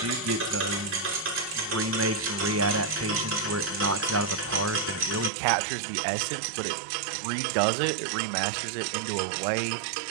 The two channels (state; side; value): drops out; left; at 5.3 s